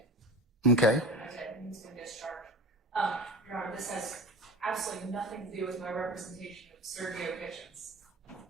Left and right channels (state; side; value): normal; both; correlation 0.32